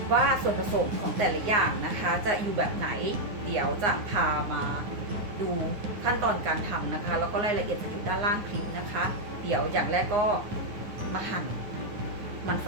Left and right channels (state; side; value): late; left; 9.6 ms